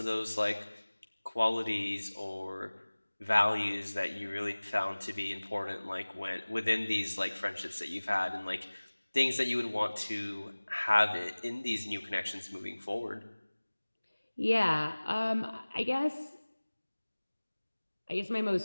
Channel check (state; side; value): inverted; both; correlation -1.00